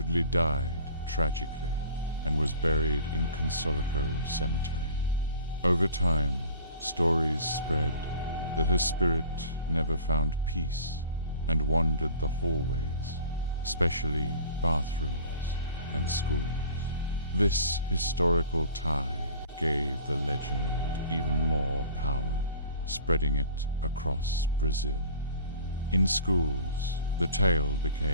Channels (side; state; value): both; inverted; correlation -0.46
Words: died tragically and was buried in Consolico Cemetery. Over time, stories spread that her spirit never found peace and wandered the hallways, especially bathrooms and schools. This historical tie gave the legend even more power, spreading it across Brazil. In schools, the tale